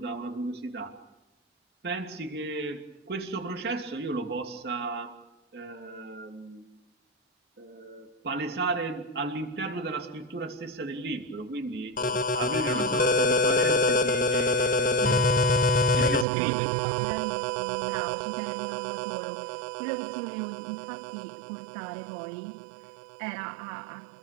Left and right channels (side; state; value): left; drops out; at 16.2 s